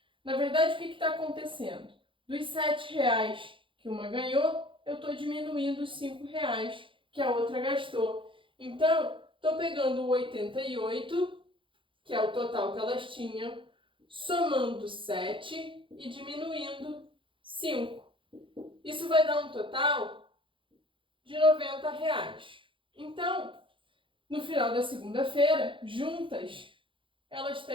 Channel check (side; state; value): left; late; 0.25 ms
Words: na verdade, o que está acontecendo? Dos R$ 7 que uma ganhou, eu estou diminuindo os R$ 5 que a outra gastou. Então, estou pegando o 88, que é o total que elas tinham, somando 7 e diminuindo 5. Isso vai dar um total de R$ 90. Então, no final da segunda-feira, juntas, elas